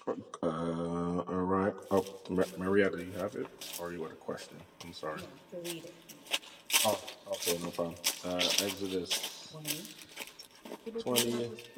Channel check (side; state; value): both; identical; correlation 1.00